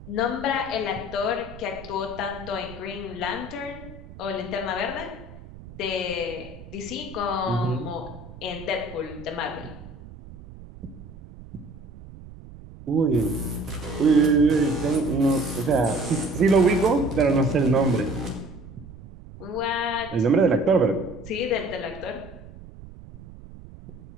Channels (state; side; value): noise; right; rumble, 17 dB below the sound